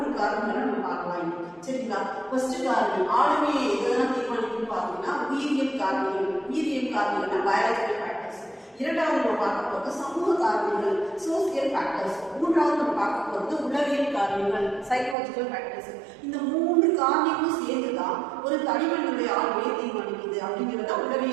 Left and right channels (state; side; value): drops out; left; at 15.2 s